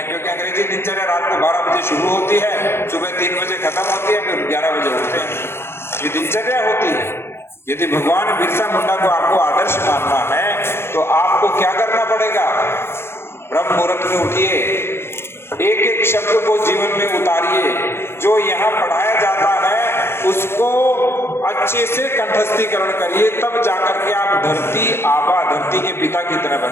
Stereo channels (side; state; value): right; late; 0.12 ms